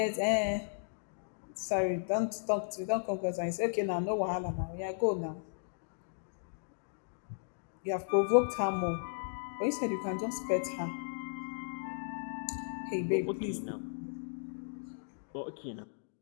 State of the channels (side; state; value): right; silent; digital silence